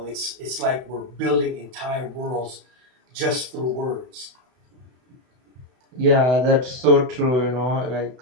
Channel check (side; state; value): left; late; 32 ms